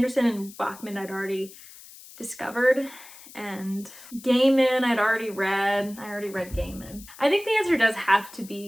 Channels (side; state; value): left; noise; hiss, 19 dB below the sound